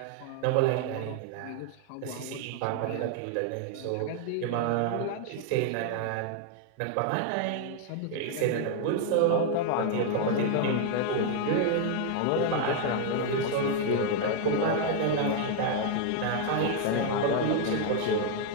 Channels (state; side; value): different; both; correlation 0.00